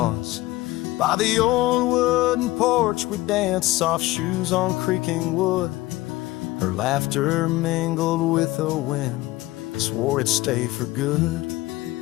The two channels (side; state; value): right; quieter; 18.4 dB